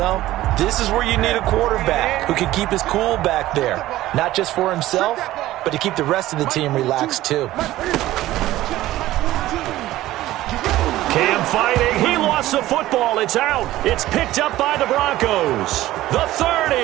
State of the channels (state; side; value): quieter; left; 15.6 dB